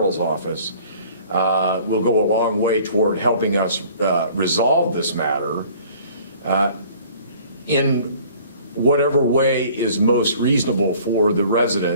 office, will go a long way toward helping us resolve this matter in whatever way is most reasonable for the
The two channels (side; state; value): both; inverted; correlation -0.51